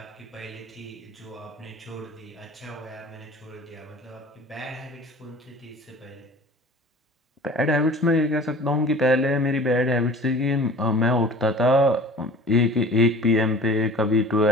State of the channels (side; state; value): both; normal; correlation 0.43